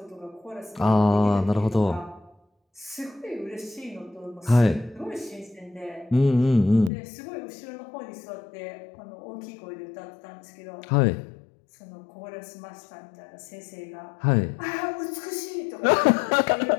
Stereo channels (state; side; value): drops out; right; at 6.9 s